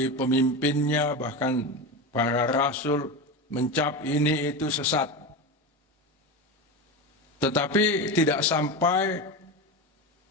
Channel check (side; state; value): both; normal; correlation 0.21